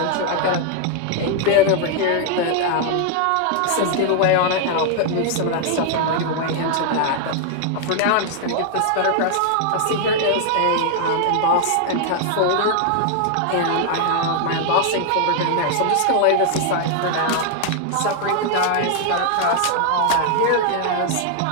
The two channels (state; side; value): different; both; correlation 0.00